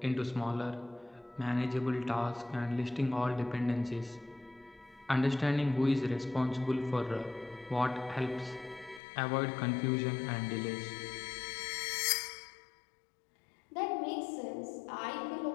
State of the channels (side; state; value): right; drops out; at 9.0 s